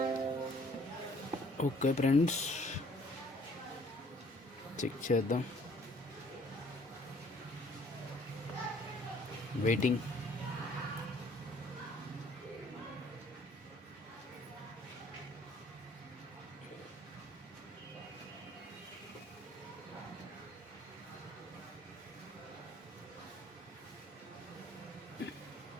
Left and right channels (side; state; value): both; normal; correlation 0.59